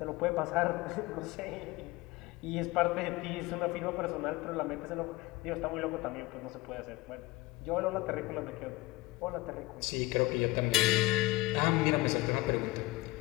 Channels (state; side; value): quieter; right; 20.2 dB